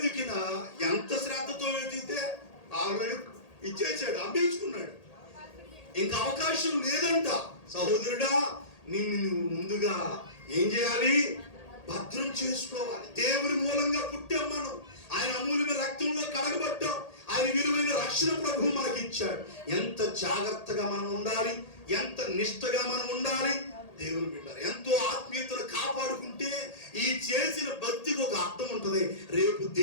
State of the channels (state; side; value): late; right; 1.8 ms